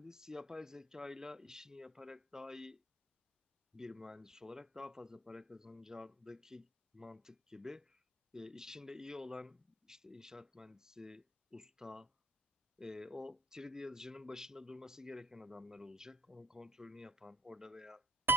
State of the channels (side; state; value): both; normal; correlation 0.56